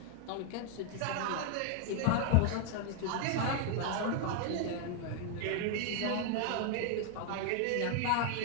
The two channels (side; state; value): both; different; correlation 0.00